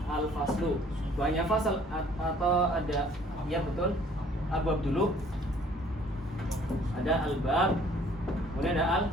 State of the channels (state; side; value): normal; both; correlation 0.57